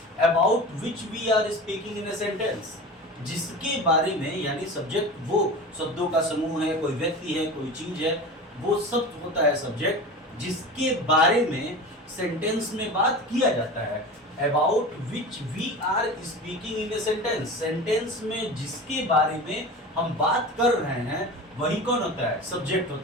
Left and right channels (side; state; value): both; normal; correlation 0.32